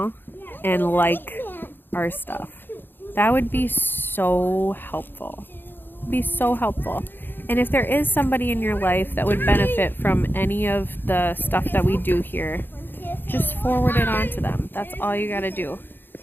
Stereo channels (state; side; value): late; right; 0.097 ms